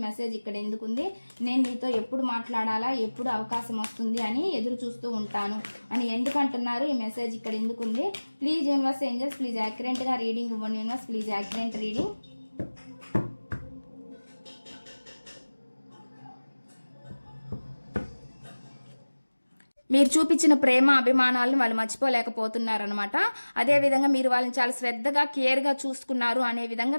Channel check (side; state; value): both; inverted; correlation -1.00